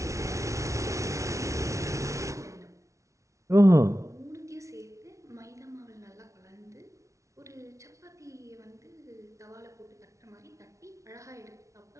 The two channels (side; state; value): left; late; 0.14 ms